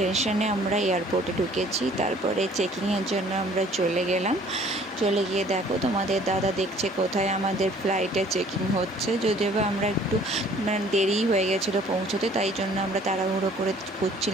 আমরা এয়ারপোর্টে ঢুকেছি। তারপরে চেকিংয়ের জন্য আমরা চলে গেলাম। চলে গিয়ে দেখো তোমাদের দাদা দেখছে কোথায় আমাদের ফ্লাইটে চেকিং হচ্ছে। যদিও বা আমরা একটু দেরি হয়ে গেছিলো পৌঁছতে, তাই জন্য আমরা তাড়াহুড়ো করে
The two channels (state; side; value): normal; both; correlation 0.55